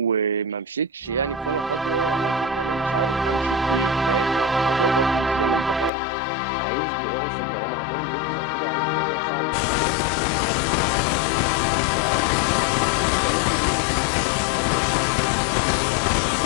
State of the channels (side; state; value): right; drops out; at 5.9 s